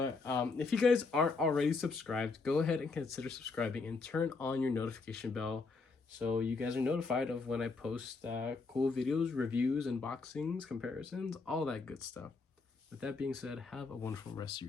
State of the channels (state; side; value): quieter; right; 4.2 dB